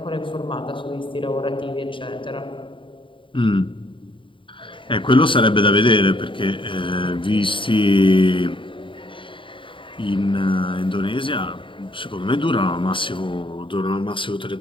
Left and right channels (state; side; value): late; right; 0.25 ms